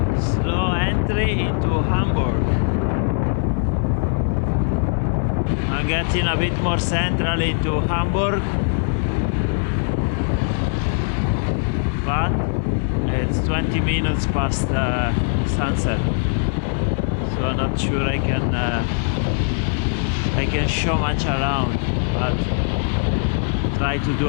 Slow entry into Hamburg. I'm getting a bit more central into Hamburg. But it's 20 minutes past sunset, so I'm not sure I can show much around, but try to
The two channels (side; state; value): right; silent; digital silence